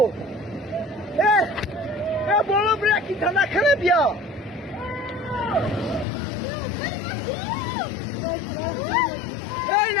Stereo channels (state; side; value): drops out; right; at 6.1 s